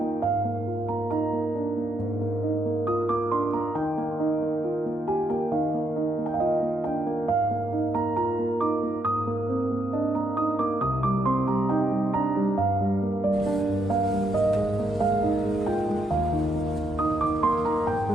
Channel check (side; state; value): both; normal; correlation 0.78